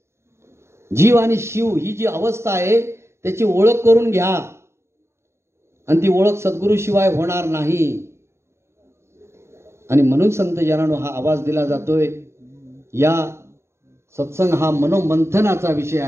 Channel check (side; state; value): left; late; 0.13 ms